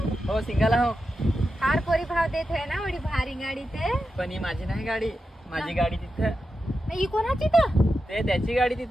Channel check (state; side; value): normal; both; correlation 0.89